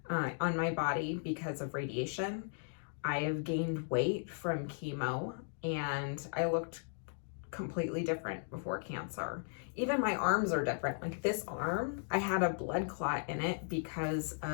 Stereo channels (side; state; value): right; silent; digital silence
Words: on my body because of radiation. I have gained weight from chemo, and I looked completely different before cancer. Even my arms are different. Like this arm, I had a blood clot in it because